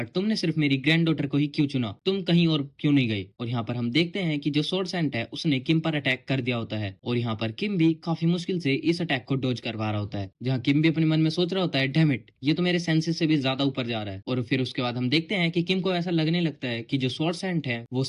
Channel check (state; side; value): identical; both; correlation 1.00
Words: तुमने सिर्फ मेरी ग्रैंड डॉटर को ही क्यों चुना, तुम कहीं और क्यों नहीं गए? और यहाँ पर हम देखते हैं कि जो स्वॉर्ड सैंड है उसने किम पर अटैक कर दिया होता है, और यहाँ पर किम भी काफी मुश्किल से इस अटैक को डॉज करवा रहा होता है। जहाँ किम भी अपने मन में सोच रहा होता है, डैम इट, ये तो मेरे सेंसेस से भी ज्यादा ऊपर जा रहा है। और फिर उसके बाद हम देखते हैं कि किम को ऐसा लगने लगता लगता है कि जो स्वॉर्ड सेंट है वो